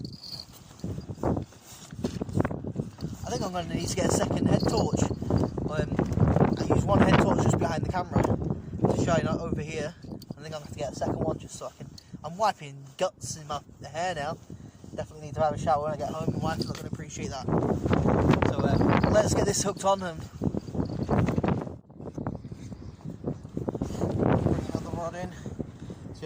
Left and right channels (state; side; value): identical; both; correlation 1.00